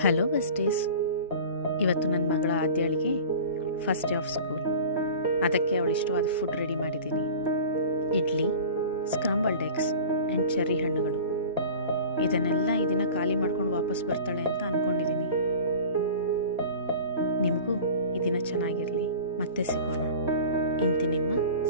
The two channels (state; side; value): inverted; both; correlation -0.39